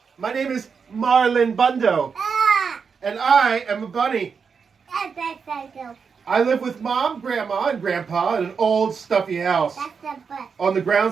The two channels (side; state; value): left; quieter; 5.9 dB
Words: my name is Marlon Bundo, and I am a bunny. I live with Mom, Grandma, and Grandpa in an old stuffy house on the